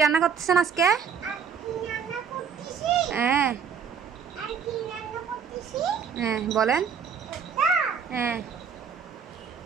রান্না করতেছেন আজকে? হ্যাঁ হ্যাঁ বলেন। হ্যাঁ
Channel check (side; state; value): left; quieter; 6.9 dB